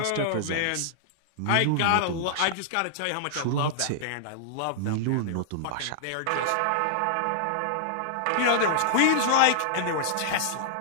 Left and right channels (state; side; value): different; both; correlation -0.01